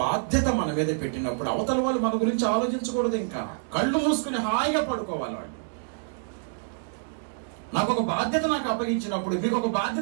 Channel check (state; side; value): silent; left; digital silence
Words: బాధ్యత మన మీద పెట్టినప్పుడు అవతల వాళ్ళు మన గురించి ఆలోచించకూడదు. ఇంకా కళ్ళు మూసుకుని హాయిగా పడుకోవాలి వాళ్ళు. నాకు ఒక బాధ్యత అప్పగించినప్పుడు, మీకు ఒక